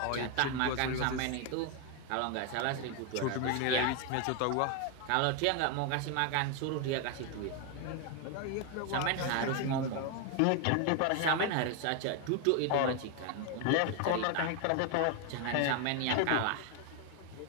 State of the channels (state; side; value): different; both; correlation 0.01